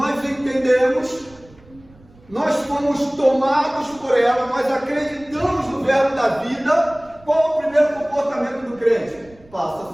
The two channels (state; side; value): noise; right; rumble, 26 dB below the sound